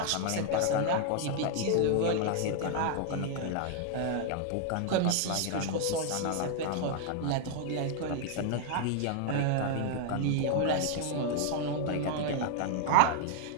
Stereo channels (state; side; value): different; both; correlation 0.00